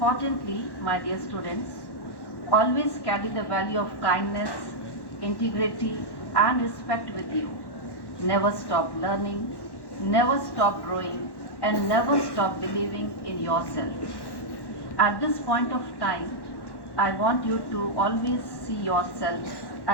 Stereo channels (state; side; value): late; right; 1.1 ms